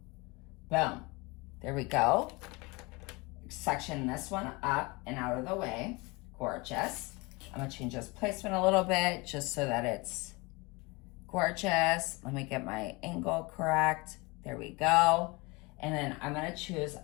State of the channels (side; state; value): right; quieter; 25.8 dB